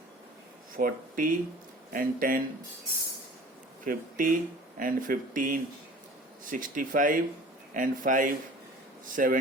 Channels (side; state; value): both; normal; correlation 0.44